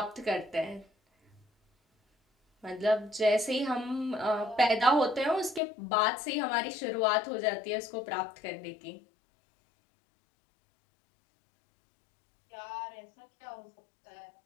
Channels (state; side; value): drops out; right; at 5.6 s